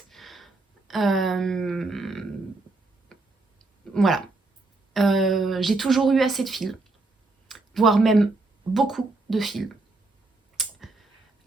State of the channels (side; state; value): left; quieter; 3.3 dB